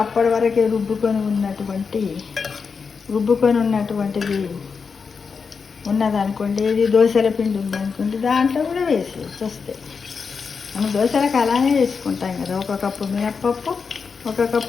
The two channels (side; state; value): right; quieter; 5.5 dB